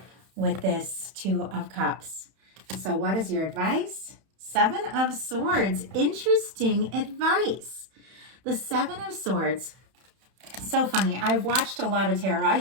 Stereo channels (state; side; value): late; left; 31 ms